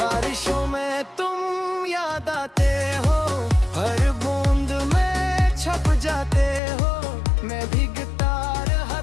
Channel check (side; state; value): right; drops out; at 6.6 s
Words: हो। मैं भी गिटार